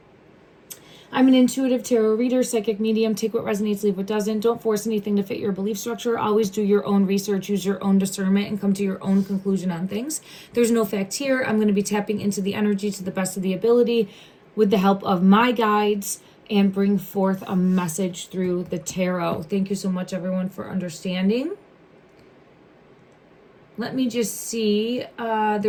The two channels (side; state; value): both; identical; correlation 1.00